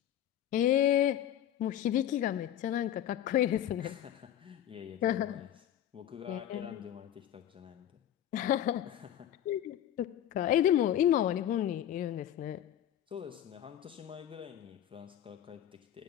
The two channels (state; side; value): quieter; right; 11.1 dB